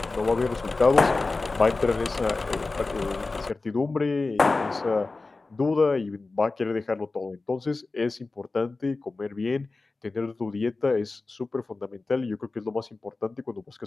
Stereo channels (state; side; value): quieter; right; 3.6 dB